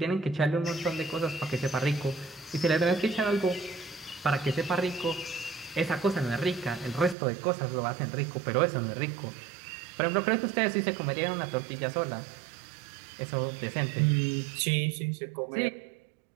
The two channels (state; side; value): drops out; left; at 7.2 s